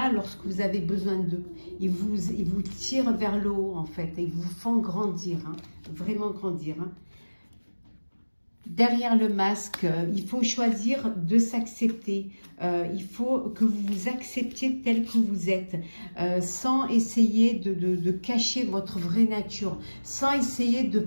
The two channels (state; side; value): inverted; both; correlation -1.00